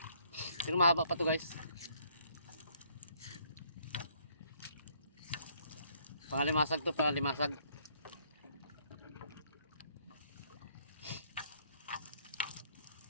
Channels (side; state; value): both; inverted; correlation -0.65